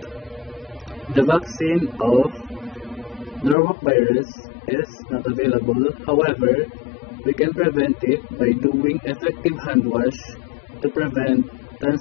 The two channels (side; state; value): right; drops out; at 3.6 s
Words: The vaccine of Norwalk virus is not available. However, we can prevent it by doing effective hand wash to prevent